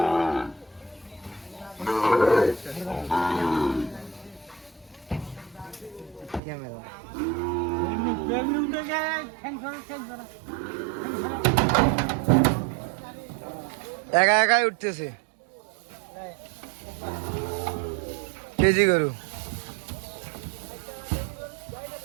একা একাই উঠতেছে, কেজি গরু।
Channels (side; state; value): left; drops out; at 6.4 s